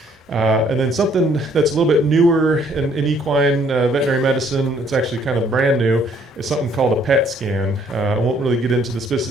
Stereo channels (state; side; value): normal; both; correlation 0.63